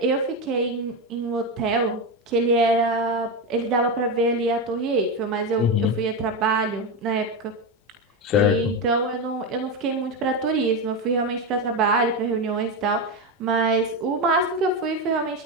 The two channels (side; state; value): both; normal; correlation 0.14